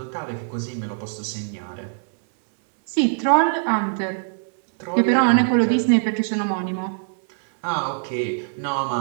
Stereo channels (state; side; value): silent; left; 64 dB below the other